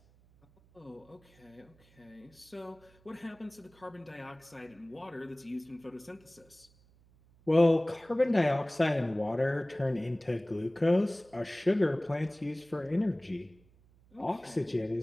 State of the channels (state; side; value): noise; right; hum, 29 dB below the sound